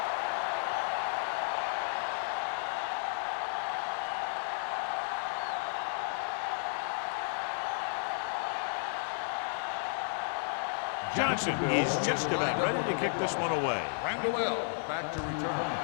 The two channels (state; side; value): silent; right; digital silence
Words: Johnson is just about ready to kick this one away. Randall back to